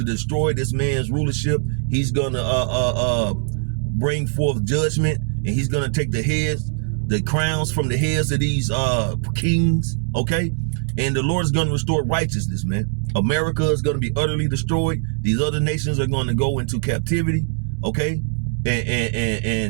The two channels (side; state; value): left; silent; digital silence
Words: destroy this man's rulership. He's gonna bring forth judgment, and he's gonna take the heads, the crowns from the heads of these kings, okay? And the Lord is gonna restore righteousness, man. America is gonna be utterly destroyed. These other nations are gonna go into captivity, okay?